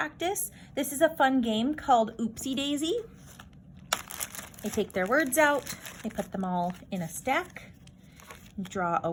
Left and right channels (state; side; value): identical; both; correlation 1.00